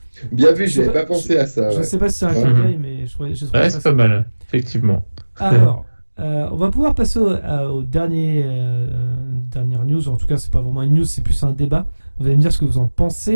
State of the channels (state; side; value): inverted; both; correlation -1.00